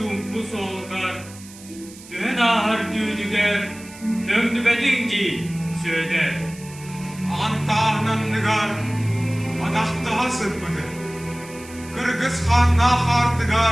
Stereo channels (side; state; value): right; noise; hiss, 19 dB below the sound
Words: bu soğukar. Düğün ahır düğdüger. Döndü bedinci, söder. Antağınan nıgar, adaktaha sırpıdı. Kırgız Hanna